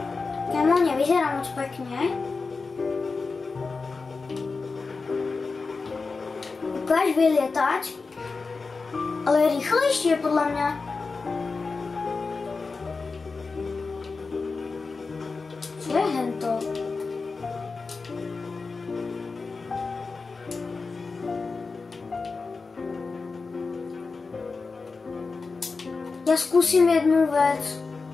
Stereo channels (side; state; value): right; quieter; 4.3 dB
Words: Kámo, nevyzerá moc pekne. Ukáž vylietať. Ale rýchlejšie podľa mňa. Čo je hento? Ja skúsim jednu vec.